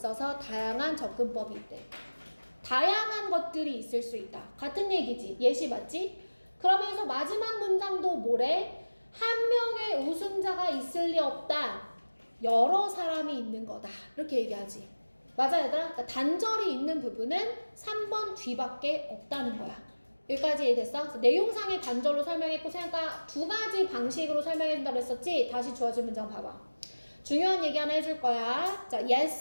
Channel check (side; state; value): both; inverted; correlation -1.00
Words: 다양한 접근법이 있대. 다양한 것들이 있을 수 있다. 같은 얘기지. 예시 맞지? 그러면서 마지막 문장도 뭐래? 한 명의 우승자가 있을 리 없다. 여러 사람이 있는 거다. 이렇게 얘기하지. 맞아 얘들아? 그러니까 단절이 있는 부분은 3번 뒤밖에 없다는 거야. 여기까지 이해됐어? 그래서 내용상의 단절로 설명했고 생각과 두 가지 방식으로 설명해준다고 했었지? 다시 주어진 문장 봐봐. 중요한 얘기 하나 해줄 거야. 자,